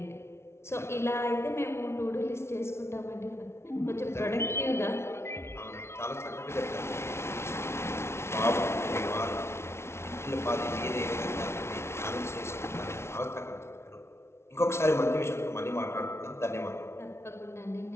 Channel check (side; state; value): right; late; 0.13 ms